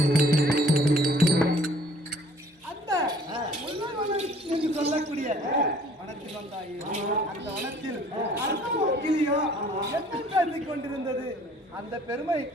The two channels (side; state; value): both; normal; correlation 0.56